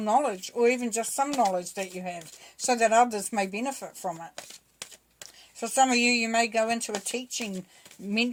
or even just some knowledge that you have, so that others may benefit from it. For some of you, you may go into a teaching,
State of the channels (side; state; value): both; identical; correlation 1.00